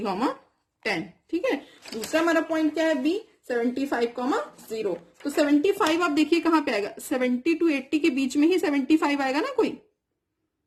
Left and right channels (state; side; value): identical; both; correlation 1.00